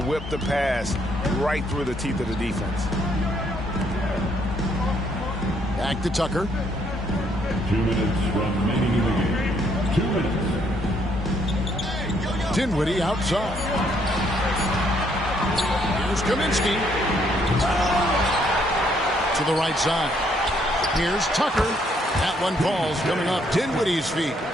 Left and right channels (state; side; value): normal; both; correlation 0.70